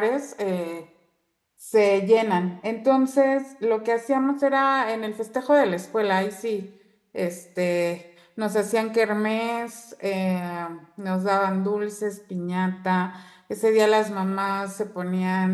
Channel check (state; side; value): identical; both; correlation 1.00